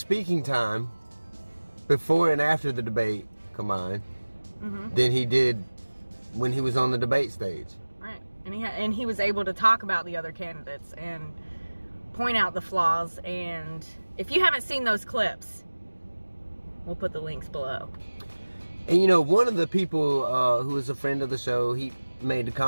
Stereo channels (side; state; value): both; inverted; correlation -1.00